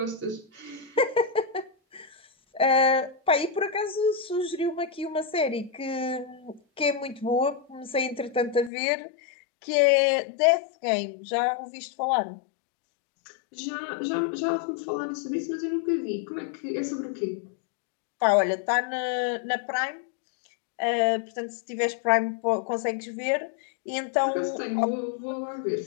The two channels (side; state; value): right; drops out; at 8.7 s